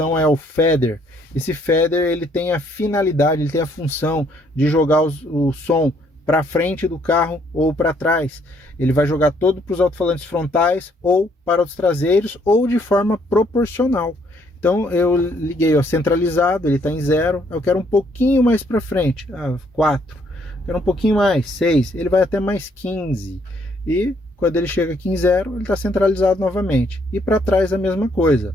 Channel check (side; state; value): both; normal; correlation 0.67